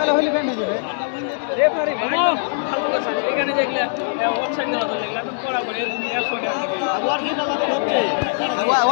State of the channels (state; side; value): silent; right; 65 dB below the other